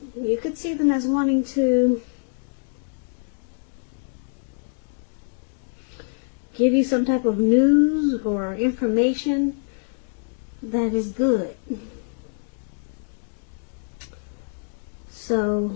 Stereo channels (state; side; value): silent; right; digital silence